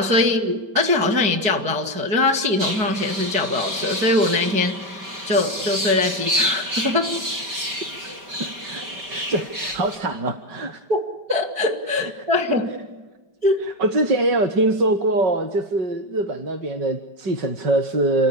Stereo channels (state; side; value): late; left; 5.1 ms